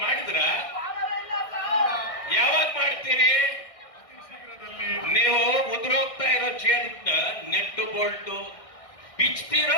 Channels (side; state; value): right; late; 1.6 ms